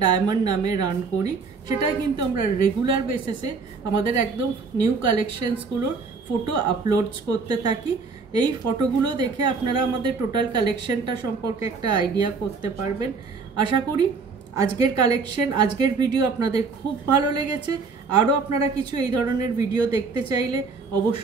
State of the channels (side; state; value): left; quieter; 4.7 dB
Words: ডায়মন্ড নামে রান করি। সেটাই কিন্তু আমরা রেগুলার বেসিসে আমাদের একদম নিউ কালেকশনসগুলোর ফটো আপলোডস করতে থাকি। এই ফটোগুলো দেখে আপনারা আমাদের টোটাল কালেকশনটা সম্পর্কে একটা আইডিয়া করতে পারবেন। আশা করি আজকের কালেকশন, আজকের ভিডিও আপনাদের খুব ভালো লেগেছে। আরও আপনারা কিছু এই ধরনের ভিডিও দেখতে চাইলে